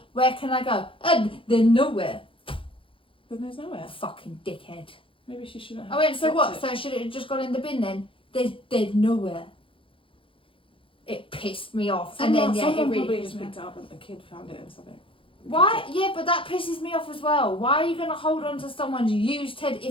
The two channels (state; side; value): late; right; 0.25 ms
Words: Where can I go? They're nowhere. Then there's nowhere. Fucking dickhead. Maybe she shouldn't have. I went, so dropped what? it. So should it have just gone in the bin then? There's nowhere. It pissed me off. Someone, and then yeah, it someone really probably pissed just me picked off. it up and the kid found it or something. Why? Yeah, but that pisses me off as well. Why are you gonna hold on to someone's used teddy?